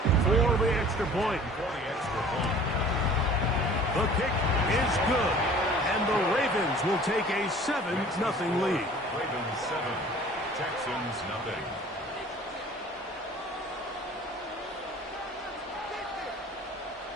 for the extra point. The kick is good, and the Ravens will take a 7-0 lead. Ravens 7, Texans nothing.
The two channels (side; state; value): both; normal; correlation 0.47